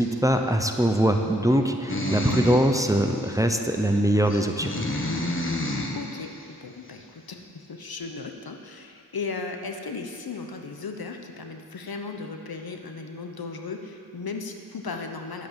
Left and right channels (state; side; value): normal; both; correlation 0.71